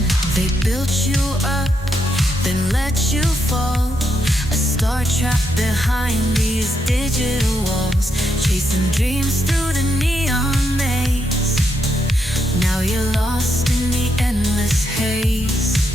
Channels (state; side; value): normal; both; correlation 0.80